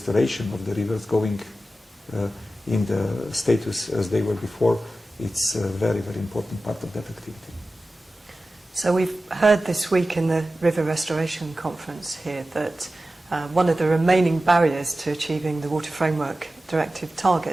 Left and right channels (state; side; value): normal; both; correlation 0.94